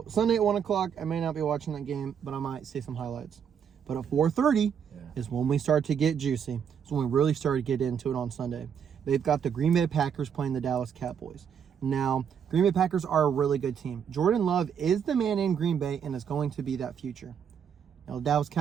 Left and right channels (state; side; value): quieter; left; 7.7 dB